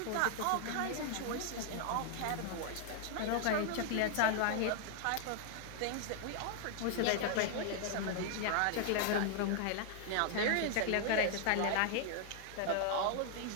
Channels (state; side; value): different; both; correlation 0.00